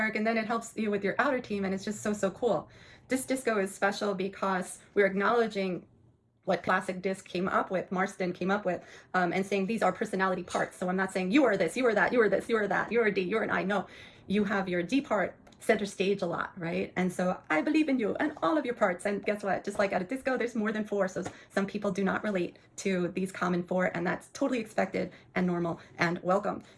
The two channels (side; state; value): both; identical; correlation 1.00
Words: and then it helps you with your outer team, and it's just so cool. Disc Disco is special because we're acknowledging what classic disc came up with, Marston came up with, and saying these are personality parts. So I'm not saying you are this, you are that, you are this, you are that, you're a D, you're an I. No, you have your D part center stage a lot, right? And so I believe in you and all of your parts. And guess what? Just like at a disco, there's more than 4. So some people do not relate to these common 4, and that's totally expected and normal and welcome.